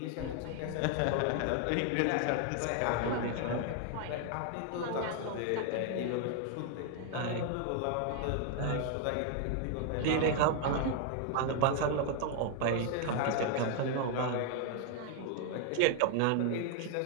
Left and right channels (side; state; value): both; different; correlation 0.00